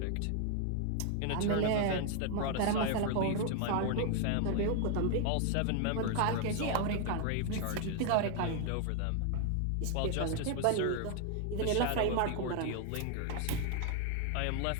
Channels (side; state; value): both; different; correlation 0.00